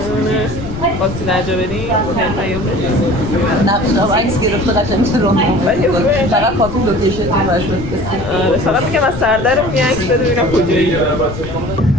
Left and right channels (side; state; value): left; noise; rumble, 10 dB below the sound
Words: خواستی درجا بریم؟ نه عکس گرفته قشنگ رو فقط کافی لوکیشن رو براش بفرستید. فقط میگم از سردرم یه عکس بده ببینم کجایی.